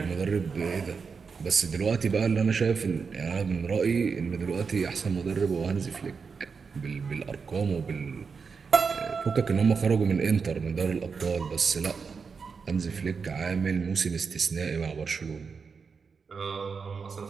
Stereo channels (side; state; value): left; quieter; 5.4 dB